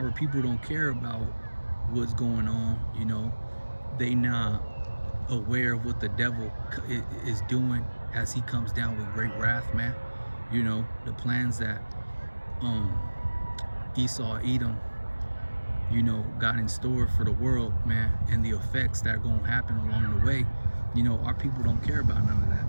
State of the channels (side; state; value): both; inverted; correlation -1.00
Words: people don't care about what's going on, you know. They not aware of what the devil is doing as he comes down with great wrath, man. You know, the plans that Esau Edom, you know, got in store for the world, man, and the effects that are going to happen along the way. You know, our people don't care about none of that,